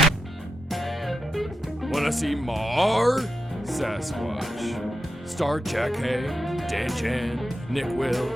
Wanna see more? Sasquatch. Star Jack Hay, Dan Chan, Nick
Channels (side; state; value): both; normal; correlation 0.87